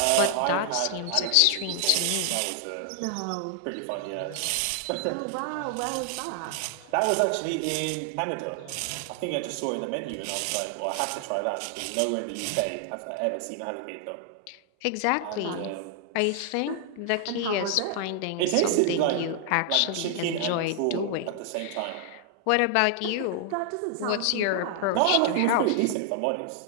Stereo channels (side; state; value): both; different; correlation 0.00